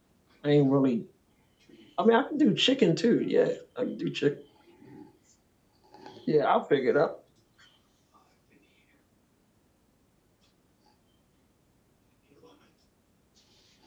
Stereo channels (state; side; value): identical; both; correlation 1.00